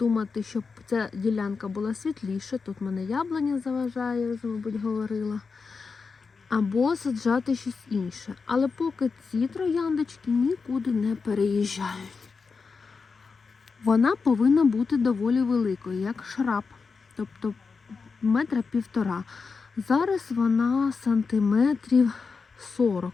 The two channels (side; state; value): right; quieter; 4.9 dB